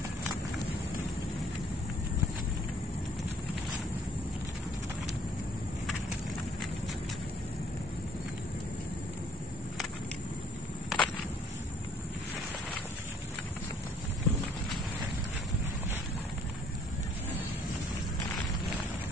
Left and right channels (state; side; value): normal; both; correlation 0.57